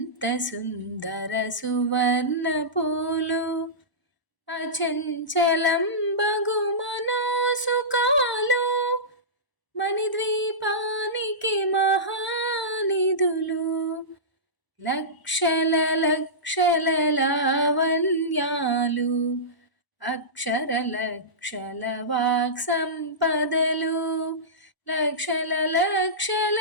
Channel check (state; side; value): late; right; 1.0 ms